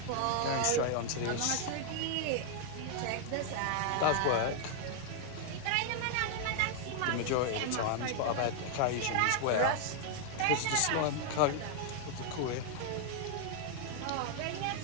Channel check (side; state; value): both; different; correlation 0.00